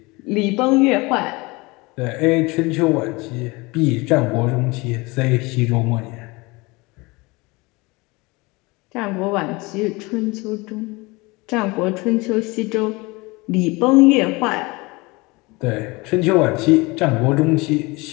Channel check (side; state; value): right; quieter; 24.4 dB